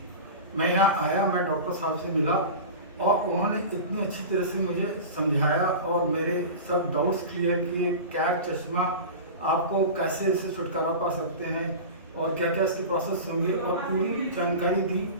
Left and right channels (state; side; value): inverted; both; correlation -0.30